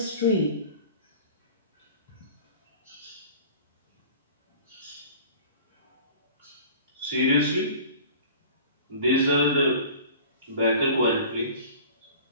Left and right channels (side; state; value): both; inverted; correlation -0.42